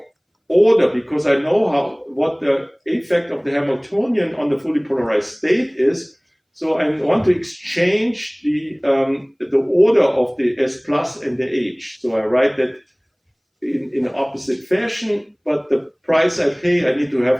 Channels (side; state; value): both; identical; correlation 1.00